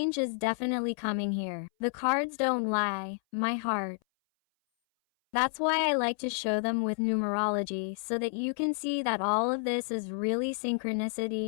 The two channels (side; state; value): right; silent; 58 dB below the other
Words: is definitely coming here. The cards don't lie, my heart. That's why I like to show them with numerology so that you can see that all of this is really